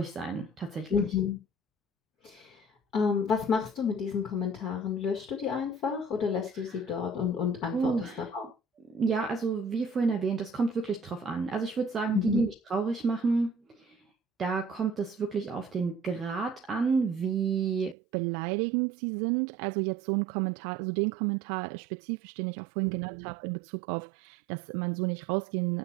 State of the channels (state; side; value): drops out; left; at 17.9 s